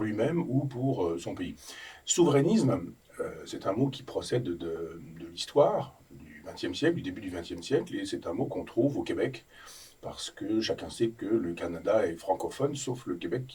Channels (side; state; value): both; identical; correlation 1.00